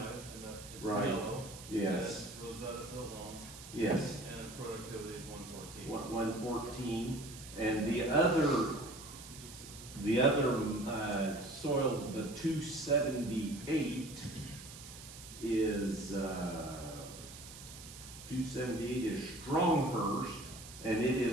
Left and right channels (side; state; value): right; noise; hiss, 14 dB below the sound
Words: it's Right. yellow. Yes. Rosetta's so long, Yes. and productivity is 114. 114, and the other soil, the 278 is, 278 is Stronghurst, and it